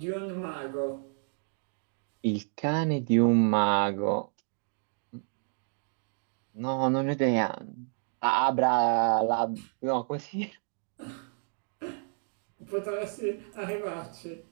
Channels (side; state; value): left; silent; 58 dB below the other